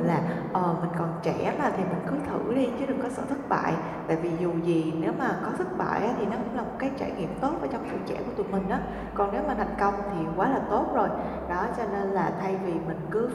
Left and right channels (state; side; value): identical; both; correlation 1.00